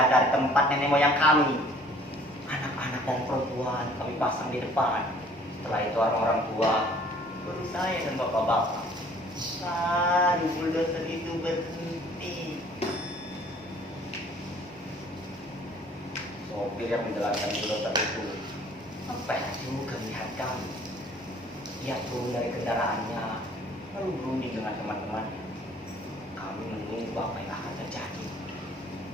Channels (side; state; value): both; normal; correlation 0.55